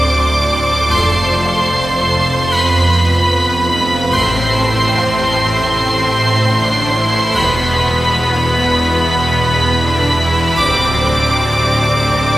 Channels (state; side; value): normal; both; correlation 0.94